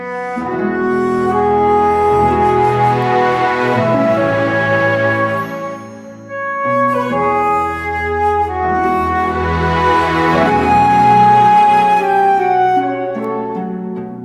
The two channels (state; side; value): identical; both; correlation 1.00